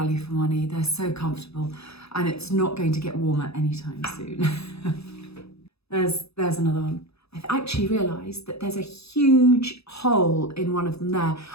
for money. They're so comfortable and it's not going to get warmer anytime soon. There's another one. I've actually realised that there's a huge hole in one of them there.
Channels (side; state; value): right; late; 0.78 ms